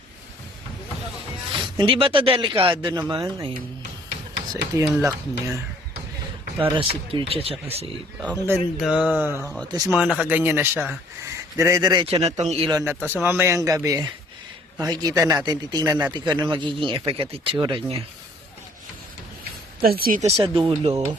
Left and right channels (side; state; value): both; normal; correlation 0.59